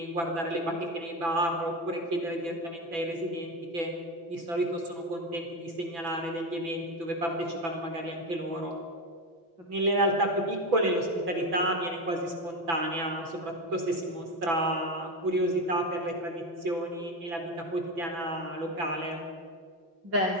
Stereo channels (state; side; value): late; left; 6.0 ms